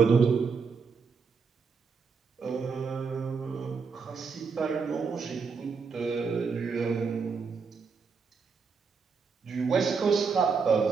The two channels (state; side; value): quieter; left; 5.3 dB